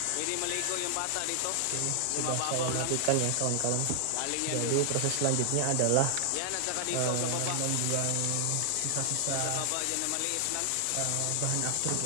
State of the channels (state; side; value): different; both; correlation 0.00